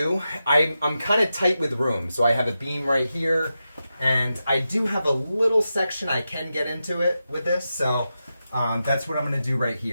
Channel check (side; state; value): both; inverted; correlation -0.90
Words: I'm kind of tight with room. So I have a beam right here. And I do have a little section I can get into it with this, so that's what I'm going to do right